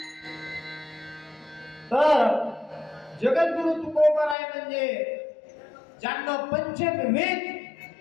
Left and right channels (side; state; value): right; drops out; at 4.4 s